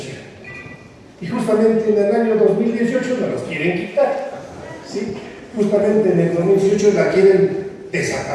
Y justamente en el año 2018 nos las quieren quitar. ¿Sí? Justamente en el 2018 la quieren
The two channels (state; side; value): identical; both; correlation 1.00